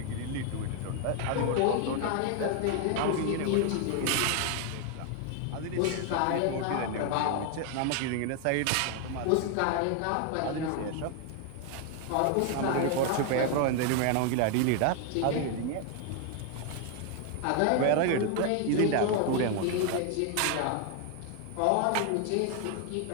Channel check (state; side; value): different; both; correlation 0.01